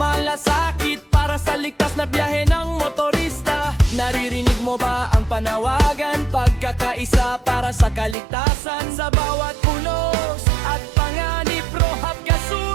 para sa ligtas na biyahe ng motorista. Naririnig mo ba ang panawagan? Pagkakaisa para sa kaligtasan sa bawat unos at panganib. Rohab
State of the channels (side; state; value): left; drops out; at 8.2 s